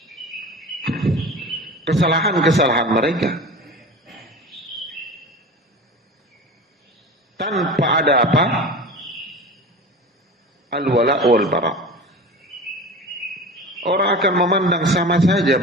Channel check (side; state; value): both; normal; correlation 0.33